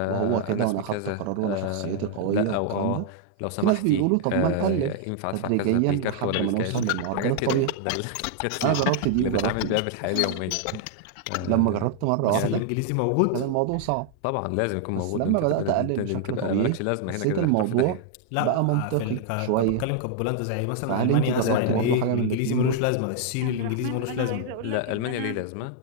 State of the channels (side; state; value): both; different; correlation 0.00